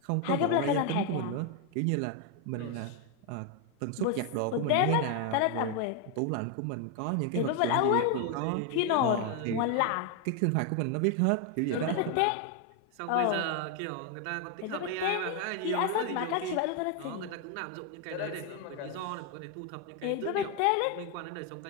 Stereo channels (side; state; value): both; different; correlation 0.01